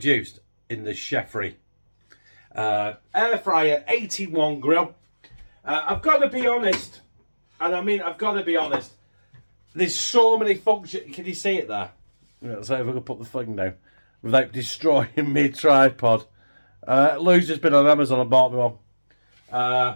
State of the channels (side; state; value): both; inverted; correlation -1.00